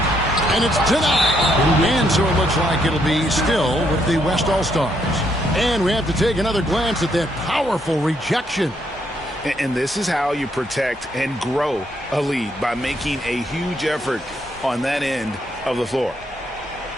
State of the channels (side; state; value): both; normal; correlation 0.74